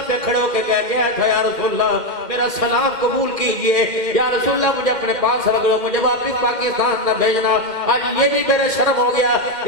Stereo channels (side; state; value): left; late; 2.1 ms